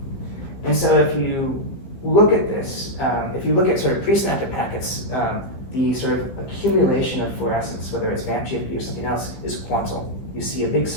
And so if you look at this, if you look at sort of presynaptic packets, the sort of accumulation of fluorescence, whether it's VAMP GFP or something else, is quantal. You see a big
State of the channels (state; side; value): late; right; 16 ms